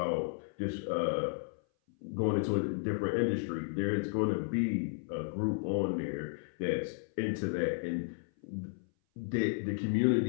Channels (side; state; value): right; silent; 55 dB below the other